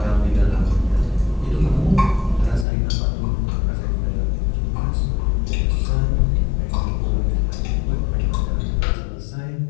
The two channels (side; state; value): right; drops out; at 2.7 s